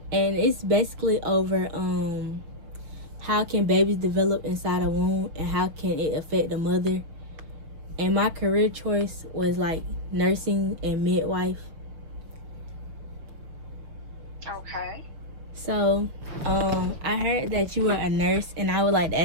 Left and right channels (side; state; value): left; late; 6.3 ms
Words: and it's basically over how can babies develop inside a womb and how can it affect the mother. And my career choice was like nursing and midwife. Okay. So, I heard that you were a nurse, and I would like to